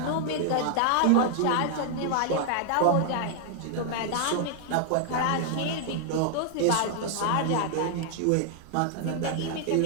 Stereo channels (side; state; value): both; different; correlation 0.00